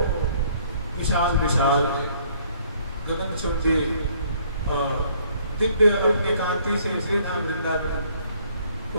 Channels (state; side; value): inverted; both; correlation -0.62